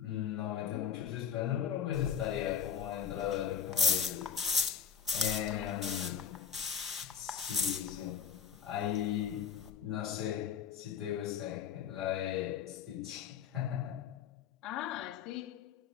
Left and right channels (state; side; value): quieter; right; 7.5 dB